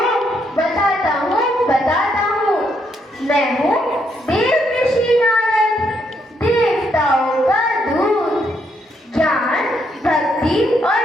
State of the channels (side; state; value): both; normal; correlation 0.75